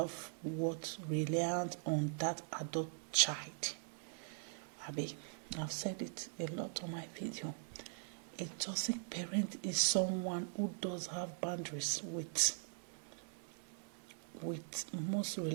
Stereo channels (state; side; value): silent; left; 50 dB below the other